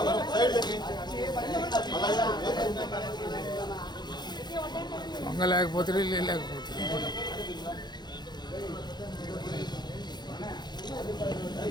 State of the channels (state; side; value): late; right; 0.21 ms